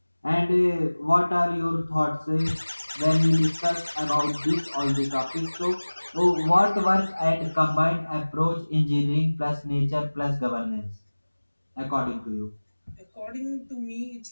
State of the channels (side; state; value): both; inverted; correlation -1.00